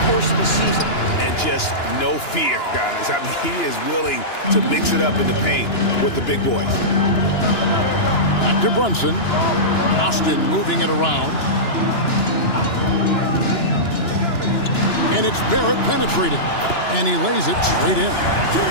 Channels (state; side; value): late; right; 2.9 ms